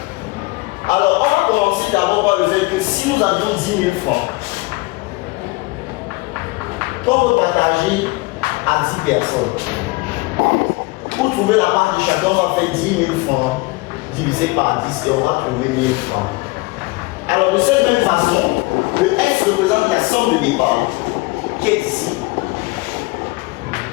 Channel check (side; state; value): right; quieter; 24.1 dB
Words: Alors, on va commencer d'abord par le fait que si nous avions 10 000 francs, qu'on veut partager à 10 personnes, pour trouver la part de chacun, on va faire 10 000 francs divisé par 10 et on va trouver 1000 francs. Alors, de cette même façon, le S représente la somme de départ qui est ici.